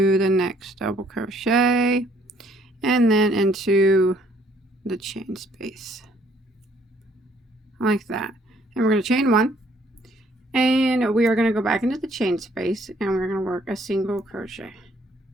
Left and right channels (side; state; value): both; normal; correlation 0.64